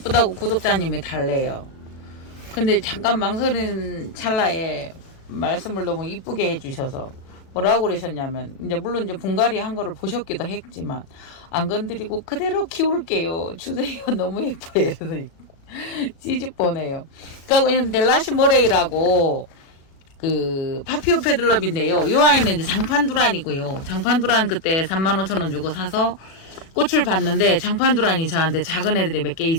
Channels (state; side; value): late; right; 37 ms